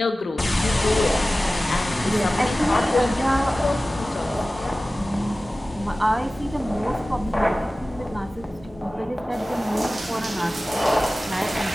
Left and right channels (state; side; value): normal; both; correlation 0.96